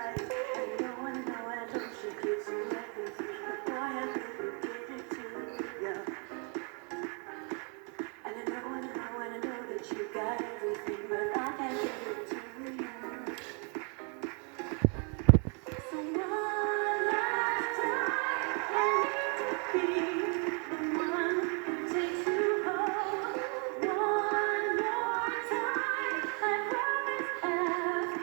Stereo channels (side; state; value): left; quieter; 37.1 dB